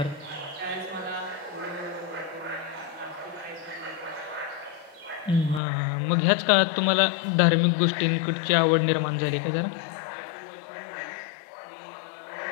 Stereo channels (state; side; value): drops out; right; at 5.6 s